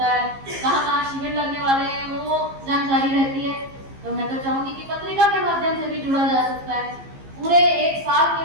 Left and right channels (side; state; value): left; late; 15 ms